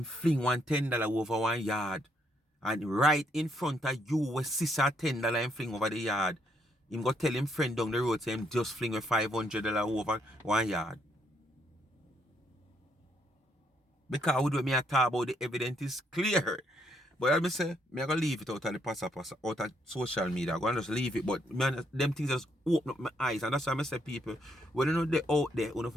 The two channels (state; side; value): normal; both; correlation 0.74